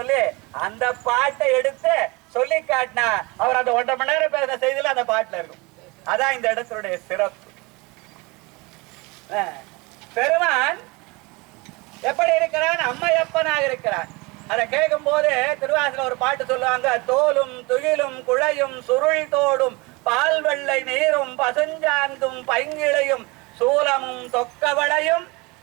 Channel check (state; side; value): quieter; left; 25.7 dB